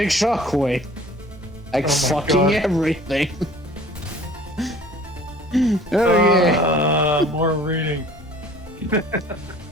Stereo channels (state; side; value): noise; left; hum, 26 dB below the sound